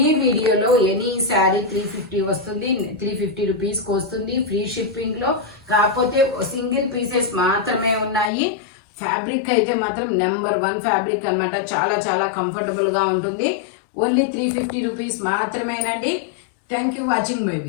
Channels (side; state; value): right; drops out; at 8.3 s